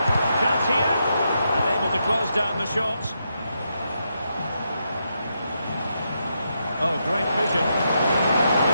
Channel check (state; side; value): inverted; both; correlation -0.82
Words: Chance here. And able to close down the shots. Oh, great vision.